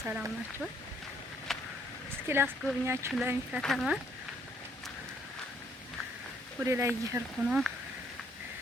ሰላም ናችሁ? እስኪ ላስጎብኛችሁ ለሚ ከተማ ወደ ላይ እየሄድኩ ነው፣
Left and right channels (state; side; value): normal; both; correlation 0.67